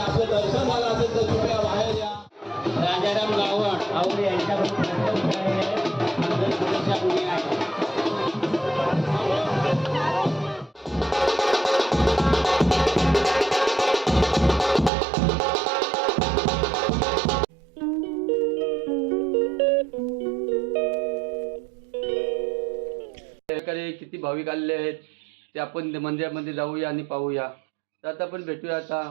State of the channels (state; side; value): drops out; left; at 14.9 s